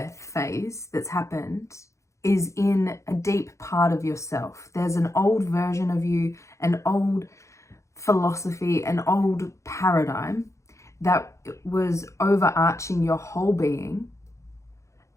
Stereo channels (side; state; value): right; late; 0.14 ms